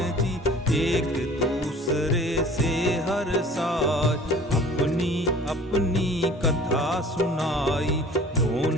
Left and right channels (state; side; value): normal; both; correlation 0.47